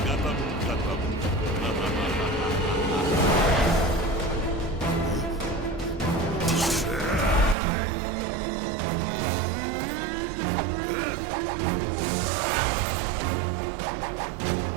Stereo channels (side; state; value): left; drops out; at 7.6 s